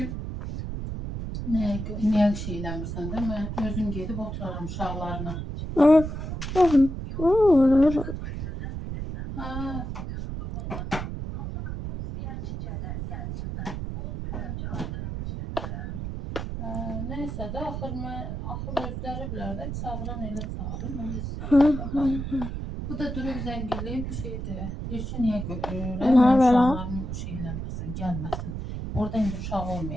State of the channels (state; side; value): noise; right; rumble, 5 dB below the sound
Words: niyə şey eləmirsən də, mən özüm gedib oturaram uşaqlarına. Neysə də, axır özləri bilər də, çağıran elə çağırır. Bu da durub zəng eləyib şeydir. Deyir ki, niyə uşaqların şey eləməsin, gəlməsin. Orada indi uşaq